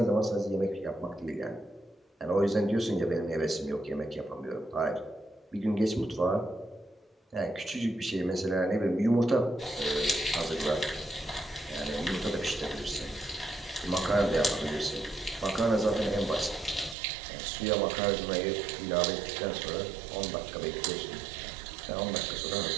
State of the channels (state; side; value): drops out; left; at 16.9 s